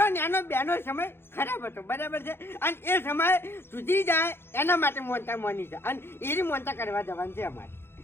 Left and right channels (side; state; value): right; late; 0.11 ms